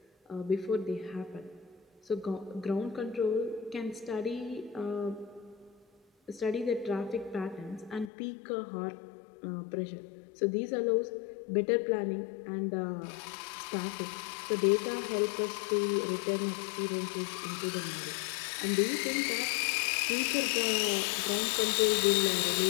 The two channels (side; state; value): right; drops out; at 8.1 s